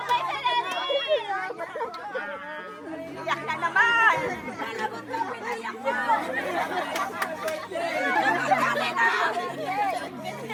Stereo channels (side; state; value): both; identical; correlation 1.00